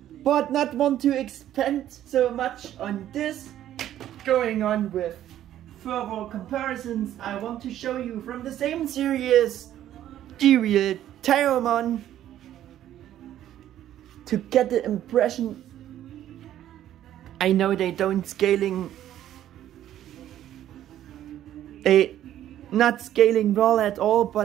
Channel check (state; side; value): quieter; left; 12.0 dB